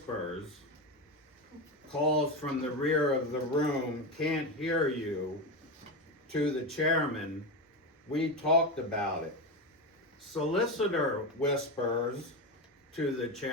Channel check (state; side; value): normal; both; correlation 0.17